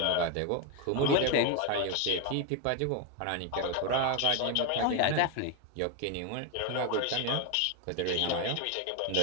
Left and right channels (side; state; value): both; different; correlation 0.02